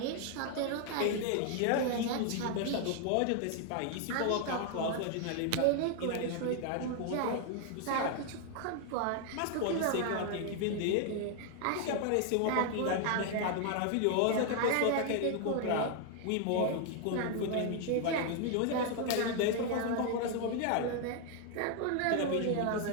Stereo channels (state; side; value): different; both; correlation 0.00